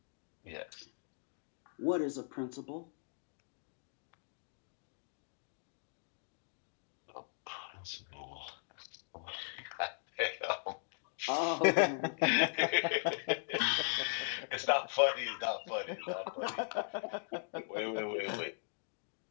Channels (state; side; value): silent; right; digital silence